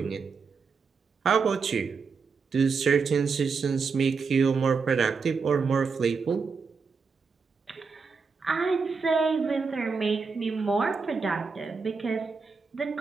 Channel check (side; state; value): left; quieter; 5.0 dB